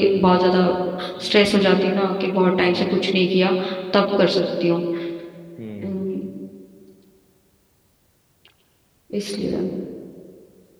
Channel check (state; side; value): identical; both; correlation 1.00